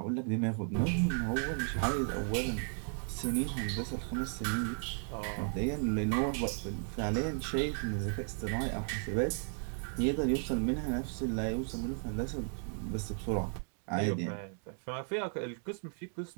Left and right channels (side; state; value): left; silent; 54 dB below the other